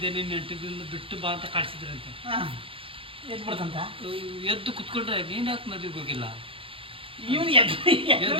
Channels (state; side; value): late; left; 0.26 ms